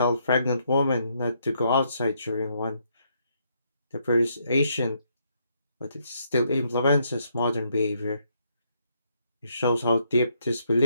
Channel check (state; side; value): inverted; both; correlation -0.74